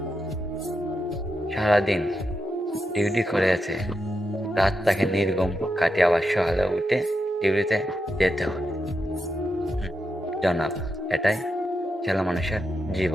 সারাদিন ডিউটি করে আছে, রাত তাকে নির্গম কাটিয়ে আবার সকালে উঠে ডিউটিতে যেতে হয়। জনাব, এটাই ছেলে মানুষের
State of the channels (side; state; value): both; normal; correlation 0.86